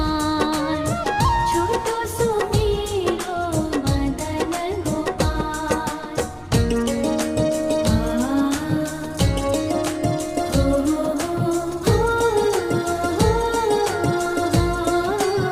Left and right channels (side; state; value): both; identical; correlation 1.00